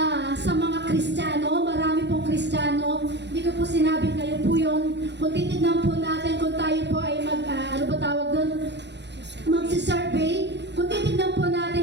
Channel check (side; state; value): left; late; 0.51 ms